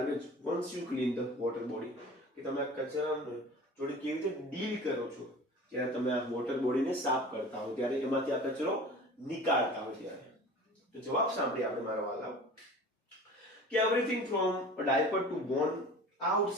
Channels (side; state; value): both; normal; correlation 0.40